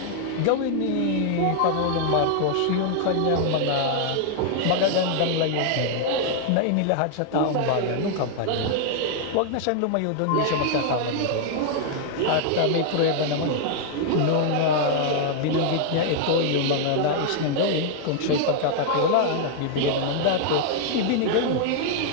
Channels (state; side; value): different; both; correlation 0.00